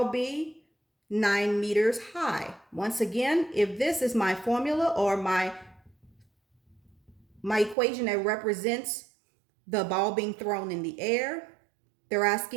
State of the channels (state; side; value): drops out; left; at 7.8 s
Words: be? 9 meters high. Once again, if this is my formula or my equation that represents the ball being thrown in the air, they're